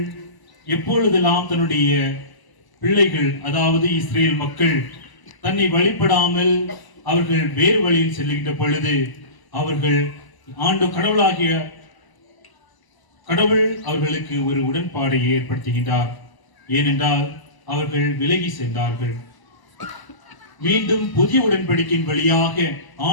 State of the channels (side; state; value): right; late; 1.0 ms